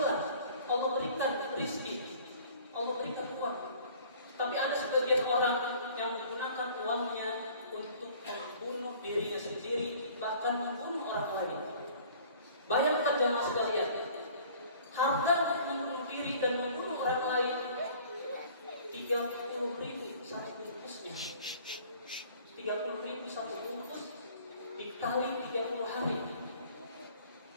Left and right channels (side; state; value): both; inverted; correlation -0.51